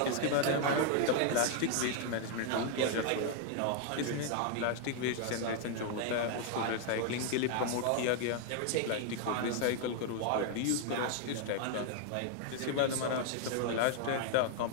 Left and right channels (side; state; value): both; different; correlation 0.00